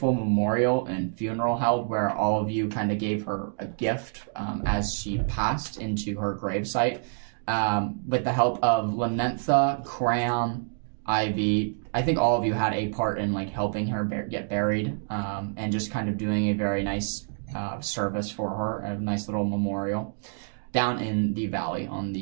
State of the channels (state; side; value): silent; left; digital silence